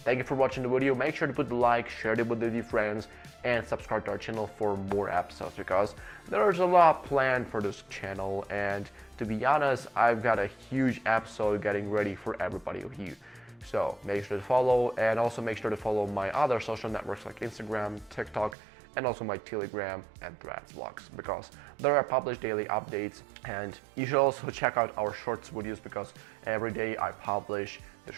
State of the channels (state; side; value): drops out; left; at 18.6 s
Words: you for watching the video. Make sure to put the like, share it with your friends, and subscribe to our channel for more episodes, because there's a lot planned for this channel, and to be honest, I've got a huge episode getting ready for everybody of you. So make sure to follow, and also make sure to follow my other social networks like Instagram, TikTok, and also my Telegram and Threads vlogs, because there are published daily updates. And you should also check out our shorts videos, because every day I publish the